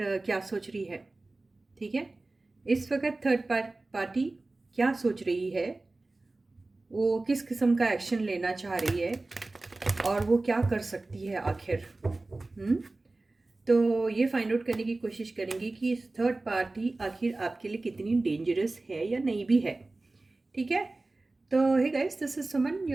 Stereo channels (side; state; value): left; quieter; 3.1 dB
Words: क्या सोच रही है। ठीक है, इस वक्त थर्ड पार्टी क्या सोच रही है, वो किस किस्म का एक्शन लेना चाह रही है और वो क्या कर सकती है आखिर। तो ये फाइंड आउट करने की कोशिश करेंगे कि थर्ड पार्टी आखिर आपके लिए कितनी डेंजरस है या नहीं भी है। ठीक है, तो hey guys, this is Suman,